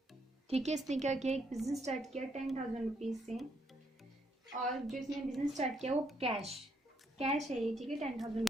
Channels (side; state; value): both; normal; correlation 0.74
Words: ठीक है, इसने क्या किया, एक बिजनेस स्टार्ट किया 10,000 रुपीज से। और जो इसने बिजनेस स्टार्ट किया वो कैश है ये। ठीक है,